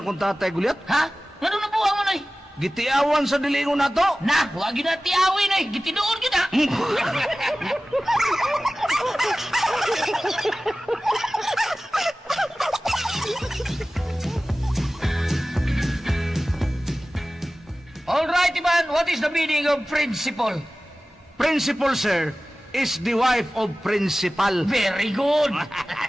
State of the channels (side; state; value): both; normal; correlation 0.96